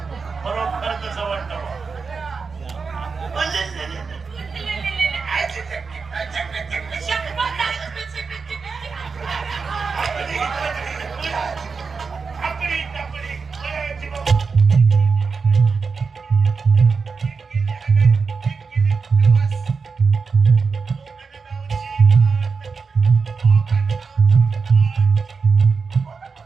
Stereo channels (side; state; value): left; quieter; 5.0 dB